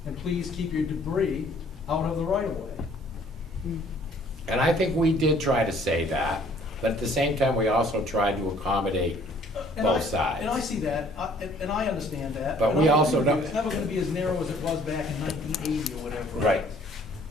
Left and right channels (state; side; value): normal; both; correlation 0.58